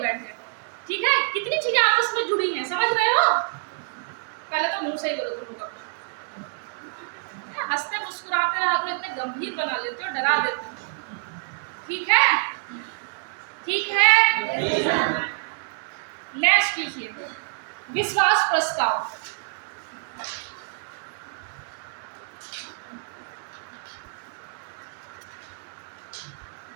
ठीक है, कितनी चीजें आपस में जुड़ी हैं, समझ रहे हो? पहले तो मुंह से ही बोलो तुम लोग, हंसते मुस्कुराते रहा करो, इतने गंभीर बना लेते हो, डरा देते हो। ठीक है, ठीक है। नेक्स्ट लिखिए, विश्वास प्रस्ताव।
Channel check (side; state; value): left; silent; 56 dB below the other